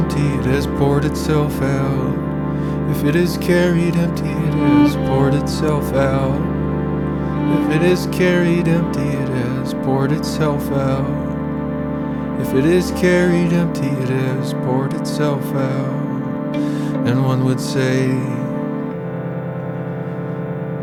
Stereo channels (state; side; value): identical; both; correlation 1.00